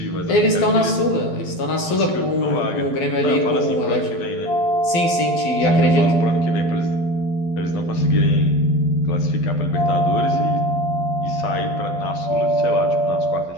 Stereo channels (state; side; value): late; right; 12 ms